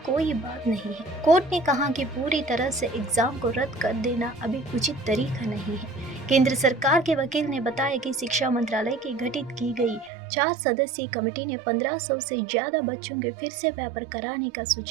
कोई बात नहीं है। कोर्ट ने कहा कि पूरी तरह से एग्जाम को रद्द कर देना अभी उचित तरीका नहीं है। केंद्र सरकार के वकील ने बताया कि शिक्षा मंत्रालय की गठित की गई 4 सदस्यीय कमेटी ने 1500 से ज्यादा बच्चों के फिर से पेपर कराने का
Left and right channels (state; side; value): drops out; left; at 10.1 s